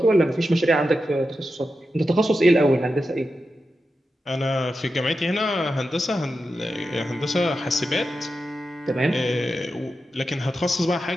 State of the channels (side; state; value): both; normal; correlation 0.90